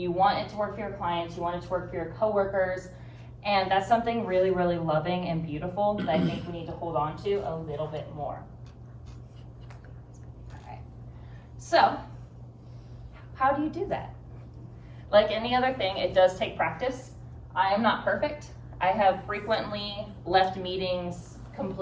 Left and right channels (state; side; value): identical; both; correlation 1.00